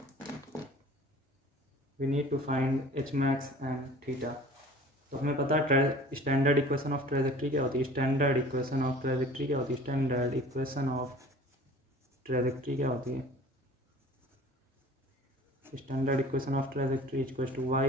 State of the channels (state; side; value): normal; both; correlation 0.45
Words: we need to find h max and theta। तो हमें पता है स्टैंडर्ड इक्वेशन ऑफ ट्रेजेक्ट्री क्या होती है, स्टैंडर्ड इक्वेशन ऑफ ट्रेजेक्ट्री क्या होती है standard equation of trajectory equals to y